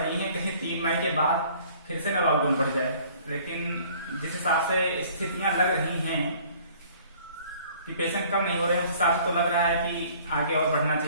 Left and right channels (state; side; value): inverted; both; correlation -0.54